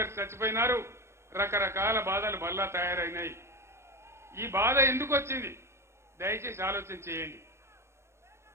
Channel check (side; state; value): left; late; 0.13 ms